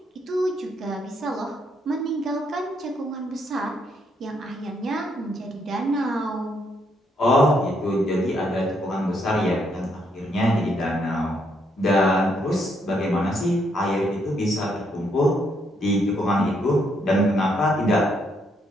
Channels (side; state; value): both; normal; correlation 0.74